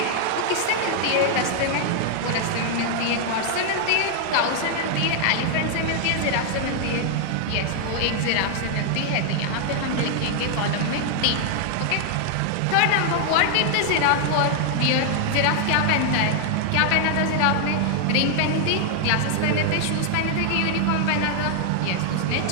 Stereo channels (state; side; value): different; both; correlation 0.00